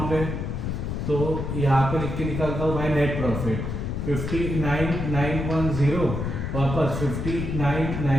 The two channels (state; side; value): noise; left; rumble, 3 dB below the sound